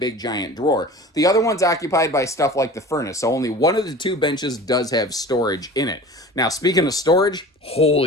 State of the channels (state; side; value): normal; both; correlation 0.40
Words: giant drawer. The other one's occupied by stuff like the furnace, so only one of the two benches does have storage in it. Now, speaking of storage,